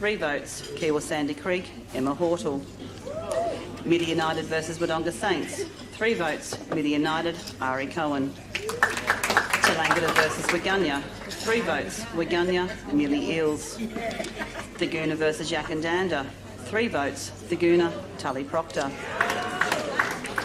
votes, Kiwa Sandy Creek, Emma Hortle. Midi United versus Wodonga Saints. 3 votes, Midi United, Ari Cohen. Tallangatta versus Waganya. 3 votes, Waganya, Millie Eels. Thaguna versus Yakandanda. 3 votes, Thaguna, Tully Proctor.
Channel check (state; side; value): identical; both; correlation 1.00